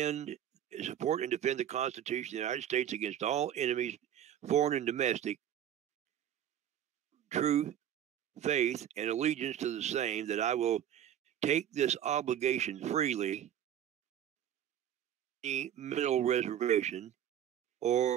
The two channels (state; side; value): quieter; left; 10.4 dB